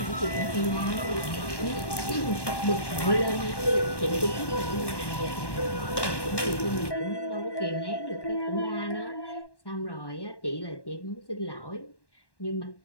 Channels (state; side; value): late; right; 1.1 ms